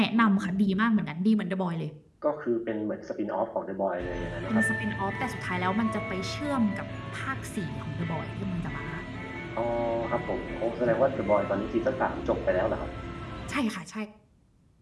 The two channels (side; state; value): both; identical; correlation 1.00